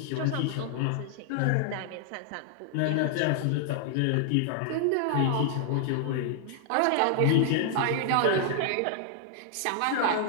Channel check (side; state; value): both; different; correlation 0.00